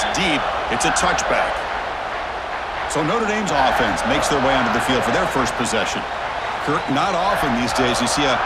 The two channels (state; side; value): identical; both; correlation 1.00